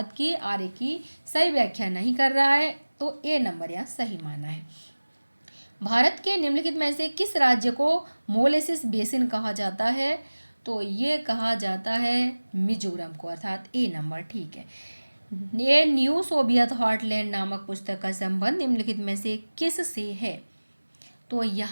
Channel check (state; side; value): inverted; both; correlation -1.00